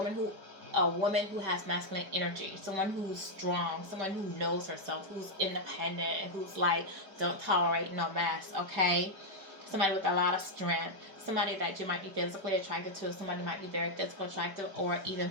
who has masculine energy, someone who's strong, someone who knows herself, who's independent, and who's like, don't tolerate no mess. Okay, somebody with a lot of strength, somebody that you might be physically attracted to, somebody who might be very physical attractive or even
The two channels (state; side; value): late; left; 5.2 ms